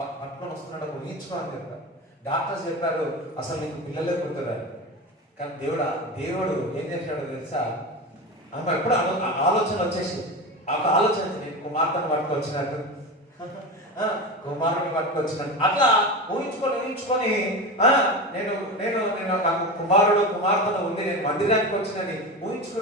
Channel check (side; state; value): both; normal; correlation 0.24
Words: పట్టుకొని వస్తున్నాడు, ఊహించుకో అని చెప్పారు. డాక్టర్స్ చెప్పారు అసలు నీకు పిల్లలే పుట్టరారు. కానీ దేవుడు ఏం చేశాడో తెలుసా? ఆమె ఎప్పుడు ఆలోచన వచ్చేసి, ఒక ఆలోచన, నేను కుమార్తెను పట్టుకొచ్చినట్టు, కుమారుని పట్టుకొచ్చినట్టు అట్లా ఊహించుకొని నేను నాకు కుమార్తెను ఉంది, నేను మందిరానికి వచ్చినని